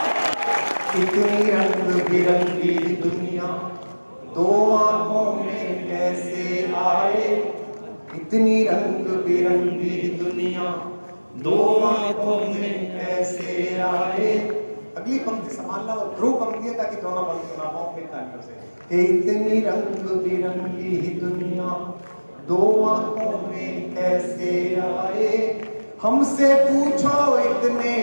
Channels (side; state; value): both; inverted; correlation -1.00